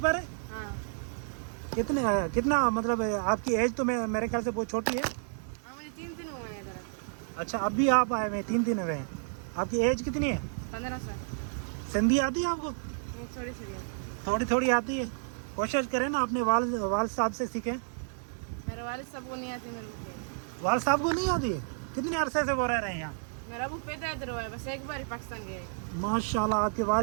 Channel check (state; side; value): silent; left; digital silence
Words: है? हाँ कितना मतलब आपकी एज तो मेरे ख्याल से बहुत छोटी है। हाँ, मुझे 3 दिन हुए हैं इधर। अच्छा, अभी आप आए हुए हैं, 3 दिन हुए हैं। आपकी एज कितनी है? 15 साल। सिंधी आती है आपको? वो थोड़ी थोड़ी है। थोड़ी थोड़ी आती है। कोशिश करें ना अपने वालिद साहब से सीखें। मेरे वालिद साहब को नहीं आती मेरे को। वालिद साहब को नहीं आती है? कितने अरसे से वो रह रहे हैं यहाँ? मेरा अबू पैदा इधर हुआ है, बस एक बार ही पाकिस्तान गए हैं। माशाल्लाह। आपके